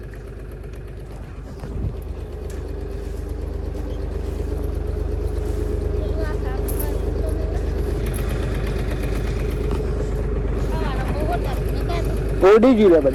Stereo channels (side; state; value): both; identical; correlation 1.00